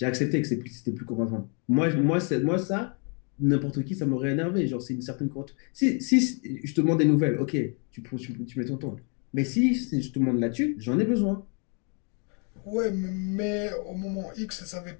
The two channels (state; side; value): quieter; right; 37.7 dB